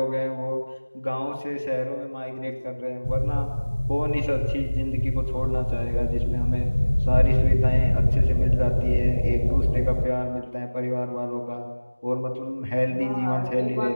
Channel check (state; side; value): inverted; both; correlation -1.00